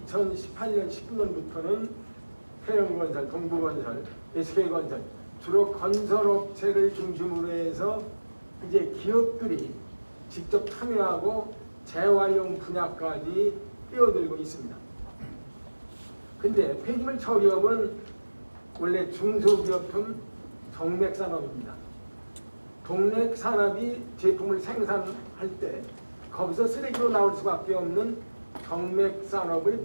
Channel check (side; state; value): both; inverted; correlation -1.00